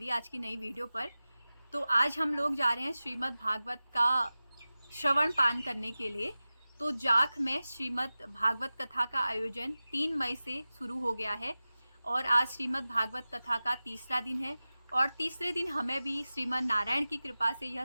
आज की नई वीडियो पर। तो आज हम लोग जा रहे हैं श्रीमद् भागवत का श्रवण पान करने के लिए। तो जाख में श्रीमद् भागवत कथा का आयोजन 3 मई से शुरू हो गया है और आज श्रीमद् भागवत कथा का तीसरा दिन है। और तीसरे दिन हमें भी श्रीमद् नारायण की कृपा से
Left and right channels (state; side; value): inverted; both; correlation -0.96